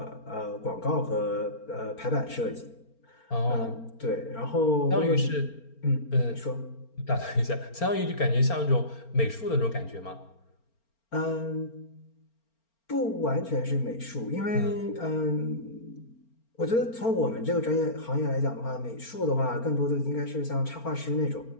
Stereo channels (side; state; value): right; late; 4.4 ms